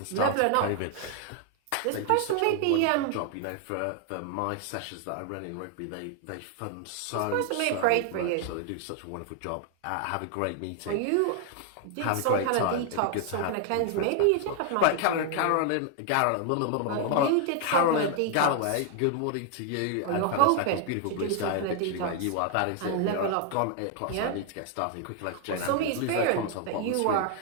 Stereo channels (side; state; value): both; different; correlation 0.00